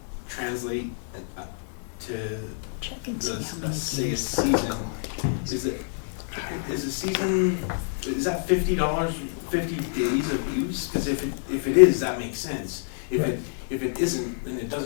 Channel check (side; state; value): right; silent; digital silence